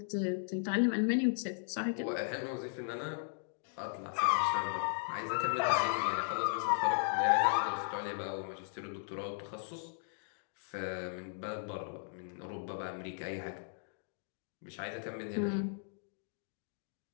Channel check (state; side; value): silent; right; digital silence